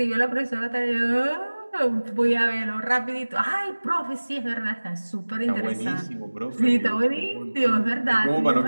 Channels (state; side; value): inverted; both; correlation -1.00